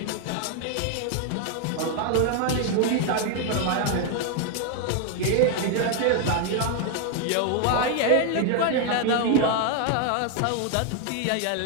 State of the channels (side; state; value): both; different; correlation 0.01